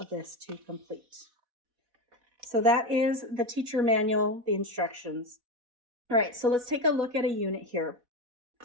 this to complete. So that is the teacher manual, the instructions. All right, so let's take a look at a unit here.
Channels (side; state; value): left; late; 4.1 ms